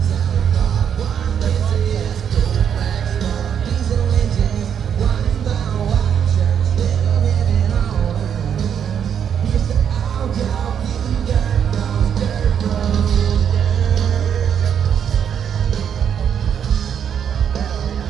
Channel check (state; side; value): quieter; left; 8.3 dB